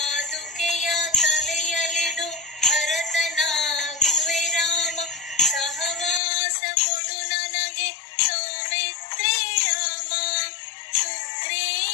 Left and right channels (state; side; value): drops out; right; at 6.2 s